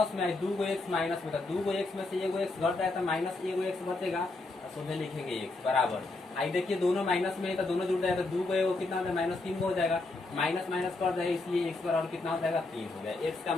में दूगो एक्स माइनस में, तो दूगो एक्स में से एगो एक्स घट जाए तो माइनस एगो एक्स बचेगा, तो सीधे लिखेंगे एक्स बराबर। आई देखिए दोनों माइनस में है तो दोनों जुड़ जाएगा, दूगो एगो कितना हो जाएगा माइनस 3 हो जाएगा, माइनस माइनस कर जाएगा, इसलिए एक्स बराबर कितना हो जाएगा 3 हो गया। एक्स का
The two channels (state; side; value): quieter; right; 3.2 dB